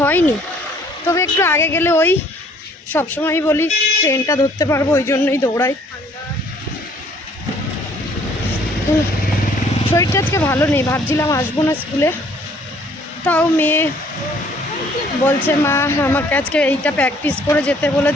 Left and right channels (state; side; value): normal; both; correlation 0.60